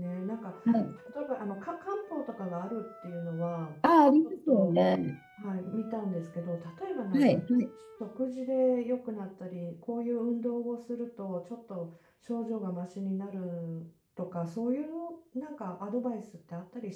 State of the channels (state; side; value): identical; both; correlation 1.00